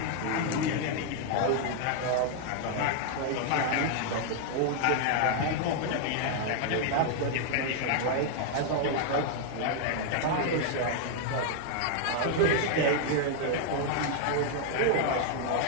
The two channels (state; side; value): different; both; correlation 0.00